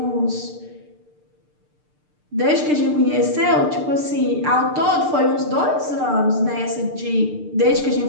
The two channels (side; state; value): left; late; 6.7 ms